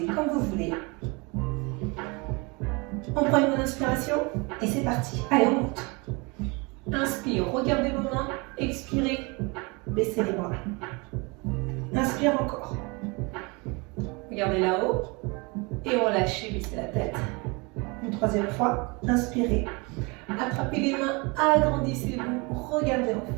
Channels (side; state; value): left; quieter; 28.3 dB